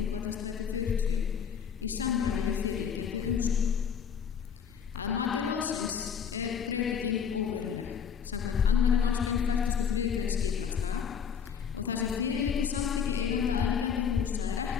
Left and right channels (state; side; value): quieter; right; 7.2 dB